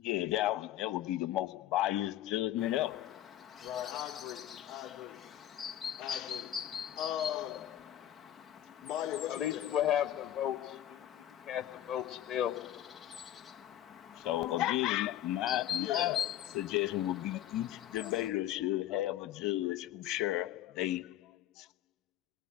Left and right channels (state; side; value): quieter; right; 12.3 dB